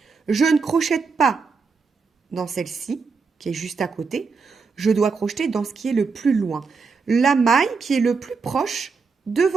Je ne crochète pas dans celle-ci, qui est juste à côté. Je dois crocheter dans ce qui est le plus loin. La maille qui est le plus proche de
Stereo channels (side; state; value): left; quieter; 4.9 dB